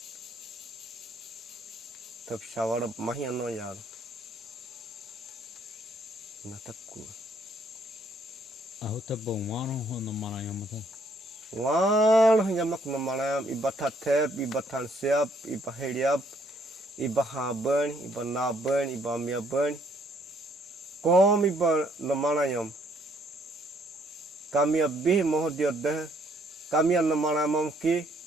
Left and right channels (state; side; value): normal; both; correlation 0.67